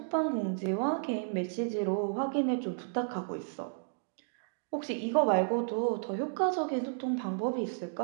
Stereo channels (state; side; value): silent; left; digital silence